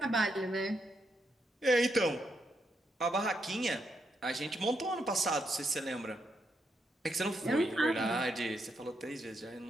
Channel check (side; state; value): both; normal; correlation 0.80